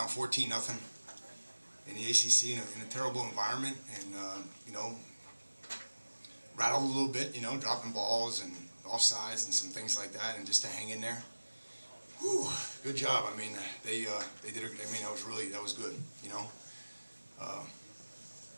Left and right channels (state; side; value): inverted; both; correlation -1.00